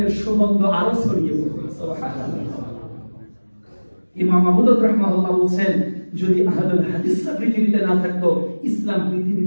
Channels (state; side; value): inverted; both; correlation -1.00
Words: সুগন্ধ আরো ছড়িয়ে পড়বে। সুবহানাল্লাহ। ইমাম আবু দাউদ রাহিমাহুল্লাহ বলেন, যদি আহলুল হাদিসরা পৃথিবীতে না থাকতো, ইসলাম পৃথিবী